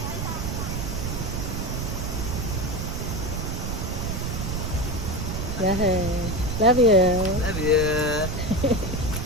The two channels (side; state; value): right; noise; rumble, 2 dB below the sound